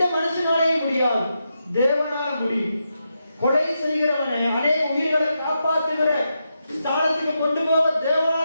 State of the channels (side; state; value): both; inverted; correlation -0.85